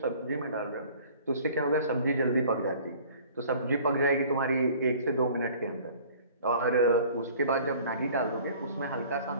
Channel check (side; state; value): both; inverted; correlation -0.49